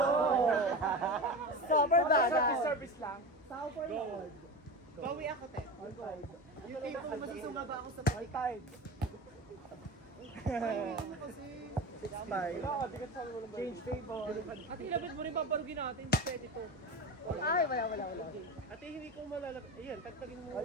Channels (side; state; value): both; normal; correlation 0.26